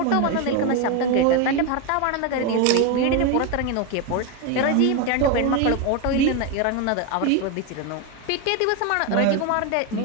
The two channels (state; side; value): different; both; correlation 0.02